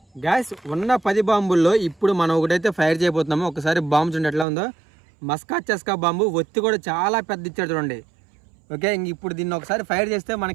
గ్యాస్ ఉన్న 10 బాంబుల్లో ఇప్పుడు మనం ఒకటైతే ఫైర్ చేయబోతున్నాము. ఒకసారి బాంబు చూడండి ఎట్లా ఉందో. మస్కా చస్కా బాంబు. ఒత్తి కూడా చాలా పెద్ద ఇచ్చాడు చూడండి. ఓకే, ఇంక ఇప్పుడు దీన్ని ఒకసారి ఫైర్ చేస్తే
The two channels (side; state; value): left; drops out; at 4.5 s